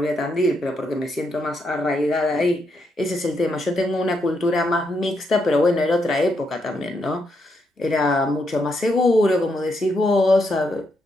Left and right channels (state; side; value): normal; both; correlation 0.79